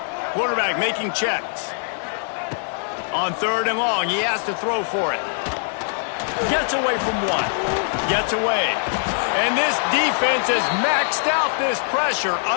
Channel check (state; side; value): silent; right; 64 dB below the other